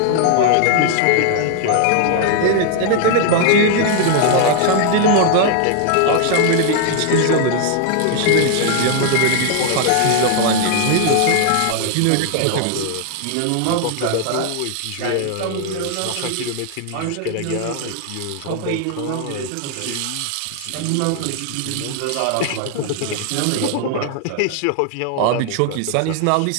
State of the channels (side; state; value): both; different; correlation 0.00